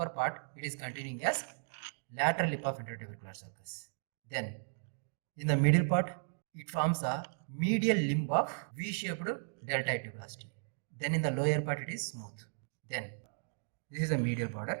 part, it is continuing as lateral lip of intertubercular sulcus. Then in the middle part, it forms a medial limb of V-shaped deltoid tuberosity. Then in the lower part, it is smooth. Then this is the medial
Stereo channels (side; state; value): left; silent; digital silence